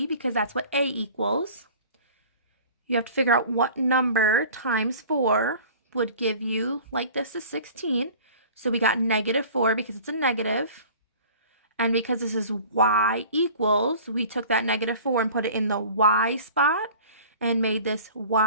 because that's what A equals. You have to figure out what number times 4 would give you, like this is 16. So we got -4 because it's a negative. And because this is y equals, we took that -4 and put it in the y spot and made this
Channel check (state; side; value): inverted; both; correlation -0.44